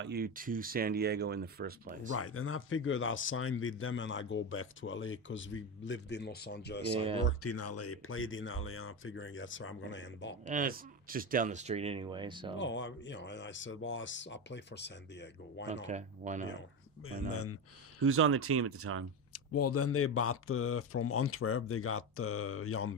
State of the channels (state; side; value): normal; both; correlation 0.17